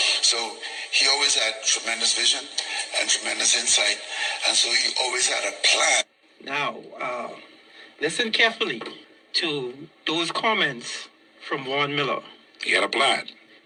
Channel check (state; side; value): identical; both; correlation 1.00